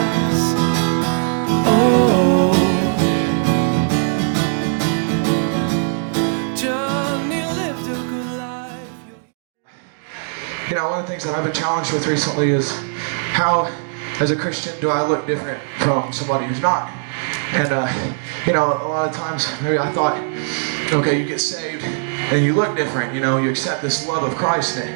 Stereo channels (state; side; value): silent; left; digital silence